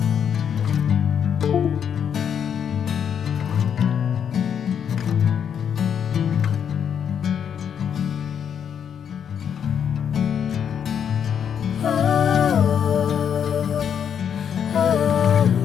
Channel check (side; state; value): right; quieter; 8.1 dB